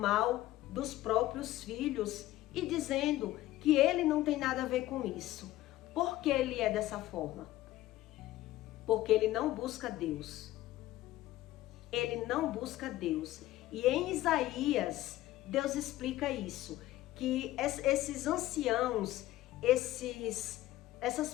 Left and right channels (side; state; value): right; quieter; 15.7 dB